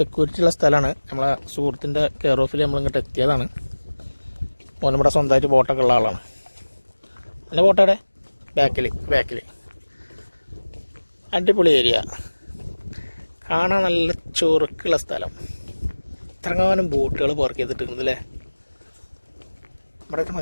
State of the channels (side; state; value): both; inverted; correlation -1.00